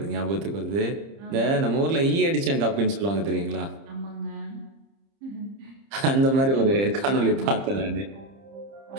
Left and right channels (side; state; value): left; late; 30 ms